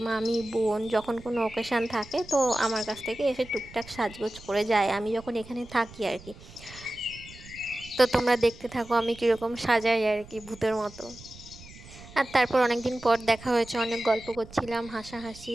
মামি বোন যখন কোনো অকেশান থাকে তো আমার কাছ থেকে এসে টুকটাক সাজগোজ করে যায়, আমি যখন এখানে থাকি আর কি। তো তোমরা দেখতে থাকো আমি কীরকম সাজাই আর কি, ভূতের মতো। আর তারপর অনেক দিন পর দেখা হয়েছে, অনেক গল্প করছিলাম, হাসাহাসি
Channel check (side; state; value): right; noise; rumble, 19 dB below the sound